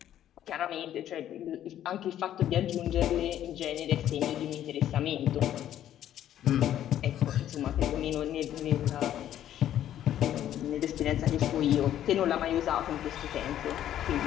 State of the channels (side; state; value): right; quieter; 11.4 dB